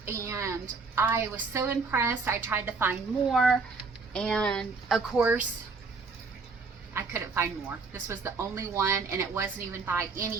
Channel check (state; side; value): quieter; left; 4.4 dB